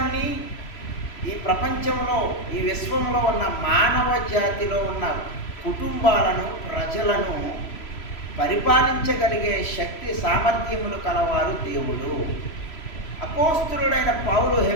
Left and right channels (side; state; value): right; late; 3.0 ms